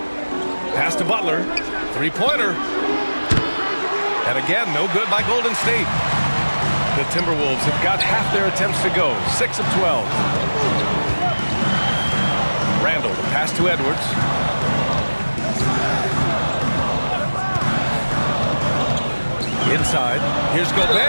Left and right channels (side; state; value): both; inverted; correlation -1.00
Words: Pass to Butler. Three-pointer. And again, no good by Golden State. The Timberwolves have got half their attempts to go. 6 of 12. Randall, the pass to Edwards. Inside. Here's